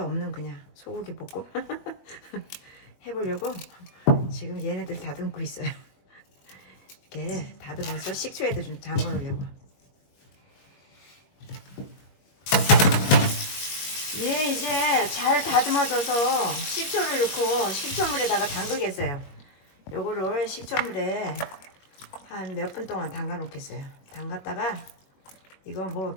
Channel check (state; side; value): late; right; 21 ms